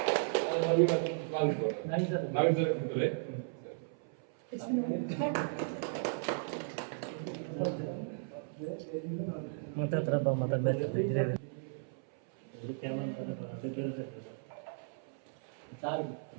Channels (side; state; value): left; silent; 54 dB below the other